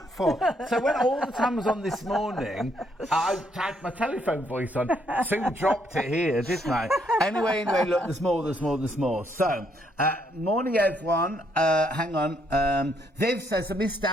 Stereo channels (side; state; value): both; normal; correlation 0.72